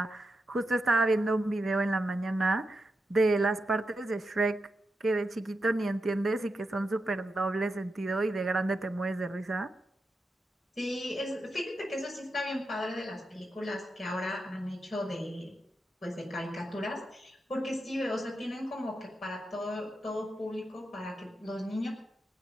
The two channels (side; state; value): both; normal; correlation 0.87